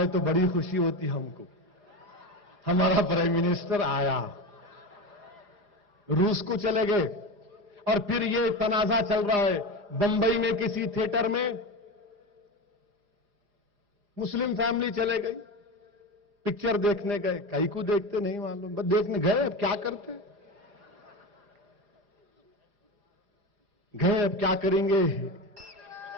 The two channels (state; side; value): late; left; 4.9 ms